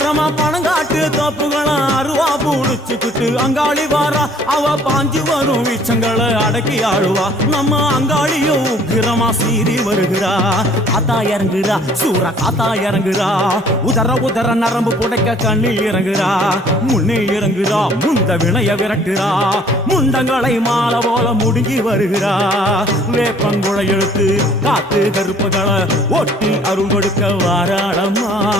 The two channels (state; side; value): normal; both; correlation 0.57